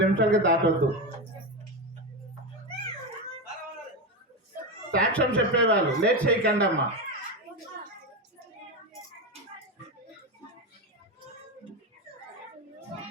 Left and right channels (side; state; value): both; normal; correlation 0.15